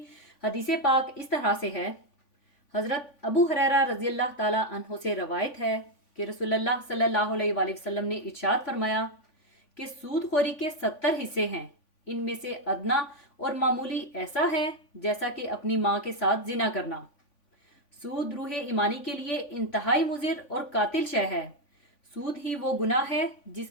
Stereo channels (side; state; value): right; late; 3.5 ms